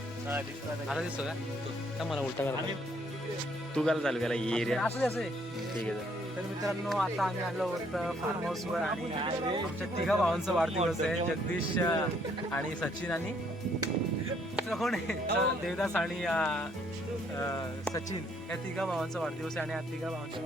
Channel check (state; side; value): normal; both; correlation 0.67